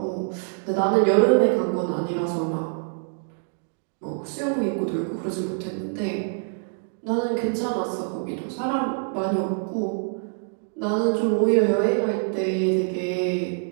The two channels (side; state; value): left; silent; digital silence